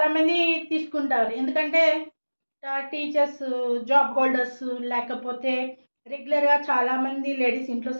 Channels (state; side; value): inverted; both; correlation -1.00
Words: తీసుకుంటారు, ఎందుకంటే టీచర్స్, జాబ్ హోల్డర్స్, లేకపోతే రెగ్యులర్గా చాలామంది లేడీస్ ఇంట్లో